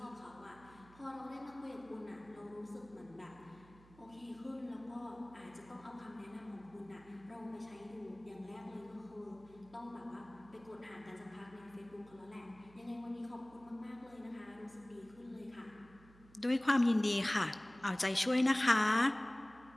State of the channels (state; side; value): noise; right; hum, 23 dB below the sound